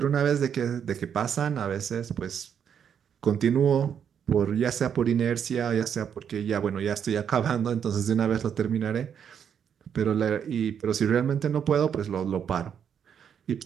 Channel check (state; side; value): quieter; left; 8.0 dB